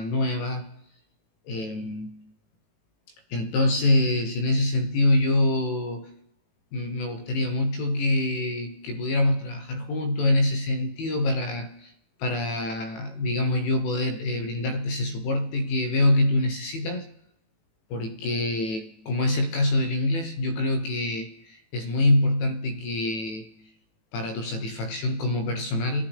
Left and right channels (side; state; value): right; late; 18 ms